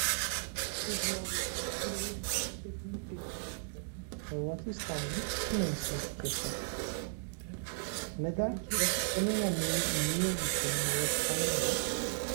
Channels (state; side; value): silent; left; digital silence